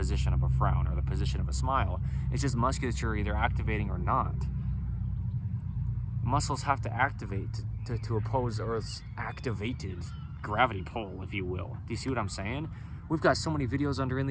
of a frown or the position of a smile. It's just musculature either activating or not. Muscles have to activate to oppose Earth's activated gravity pull, if you will. Do you see what I'm saying? We've got so many videos under In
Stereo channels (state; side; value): identical; both; correlation 1.00